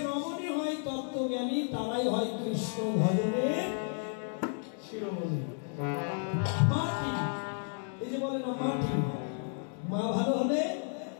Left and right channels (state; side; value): silent; right; 56 dB below the other